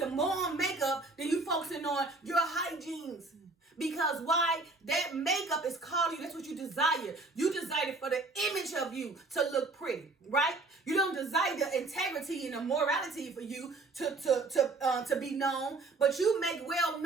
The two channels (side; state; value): left; quieter; 3.4 dB